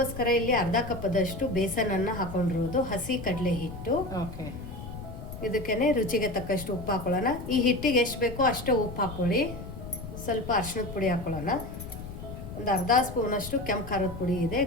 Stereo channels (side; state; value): left; noise; rumble, 10 dB below the sound